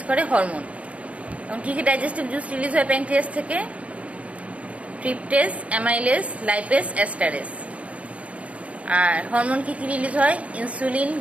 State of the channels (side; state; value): left; late; 0.064 ms